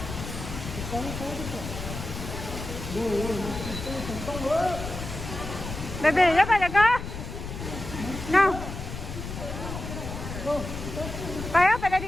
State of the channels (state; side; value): noise; left; rumble, 8 dB below the sound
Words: Baby, đó phải có. Nào. Phải á, phải đây